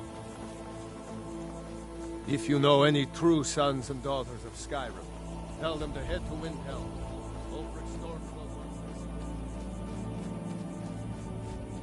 If you know any true sons and daughters of Skyrim, tell them to head to Windhelm. Ulfric Stormcloak.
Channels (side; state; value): both; identical; correlation 1.00